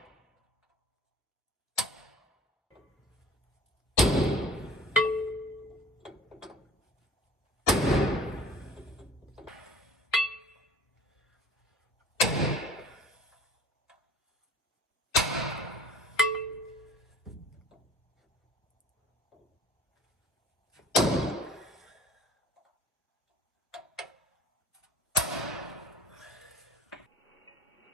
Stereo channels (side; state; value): both; normal; correlation 0.46